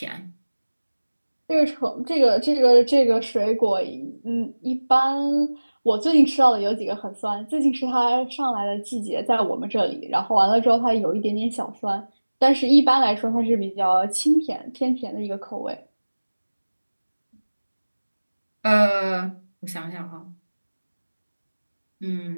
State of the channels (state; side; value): inverted; both; correlation -1.00